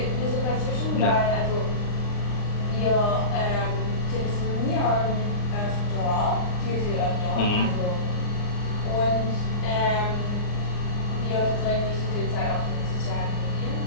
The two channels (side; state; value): right; late; 39 ms